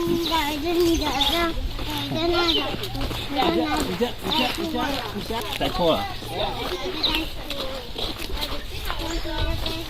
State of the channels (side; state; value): both; identical; correlation 1.00